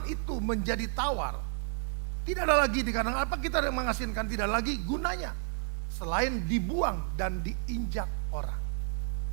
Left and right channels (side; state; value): left; silent; 55 dB below the other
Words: itu menjadi tawar, tidak ada lagi dikatakan apa kita mengasinkan, tidak lagi gunanya selain dibuang dan diinjak orang.